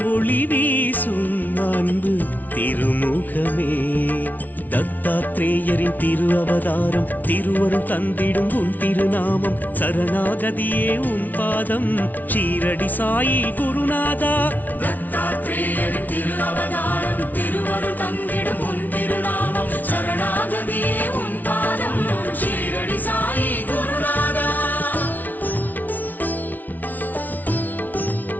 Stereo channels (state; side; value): late; right; 0.080 ms